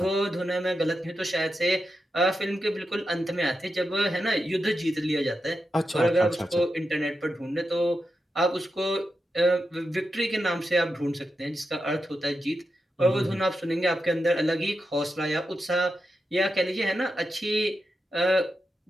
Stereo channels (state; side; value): normal; both; correlation 0.88